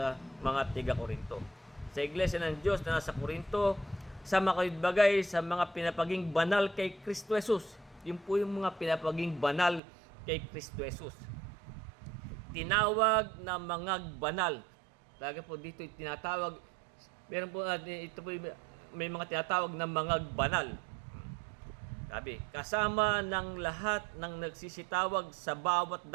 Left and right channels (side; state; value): left; drops out; at 9.8 s